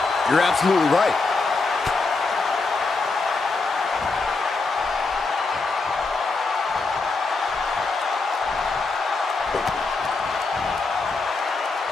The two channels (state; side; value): quieter; right; 3.9 dB